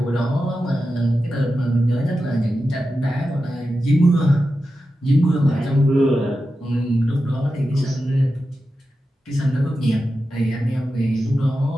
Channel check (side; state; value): both; normal; correlation 0.91